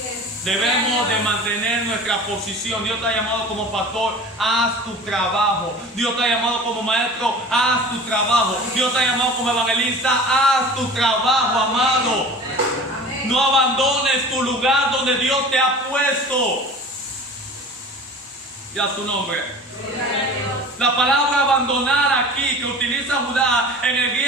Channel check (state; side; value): normal; both; correlation 0.40